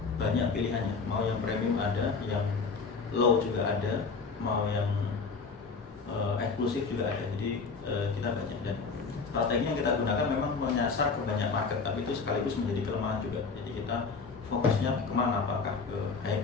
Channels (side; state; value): right; quieter; 4.8 dB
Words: banyak pilihannya. Mau yang premium ada, yang low juga ada, mau yang eksklusif juga ada. Jadi kita banyak, dan strategi yang kita gunakan memang menyasar ke banyak market, tapi itu sekaligus menjadi kelemahan juga. Jadi kita fokusnya kemana, apakah ke